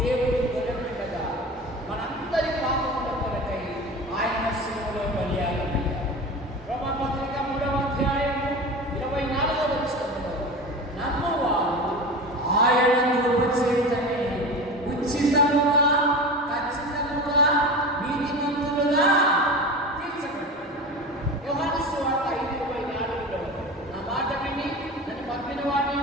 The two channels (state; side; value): normal; both; correlation 0.30